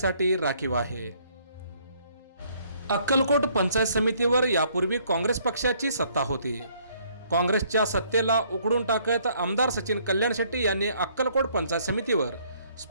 राखीव आहे. अक्कलकोट पंचायत समितीवर यापूर्वी काँग्रेस पक्षाची सत्ता होती. काँग्रेसच्या सत्तेला उकडून टाकत आमदार सचिन कल्याणशेट्टी यांनी अक्कलकोट पंचायत समितीवर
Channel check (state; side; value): inverted; both; correlation -0.64